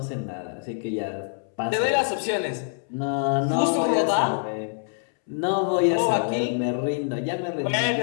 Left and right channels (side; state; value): right; silent; 62 dB below the other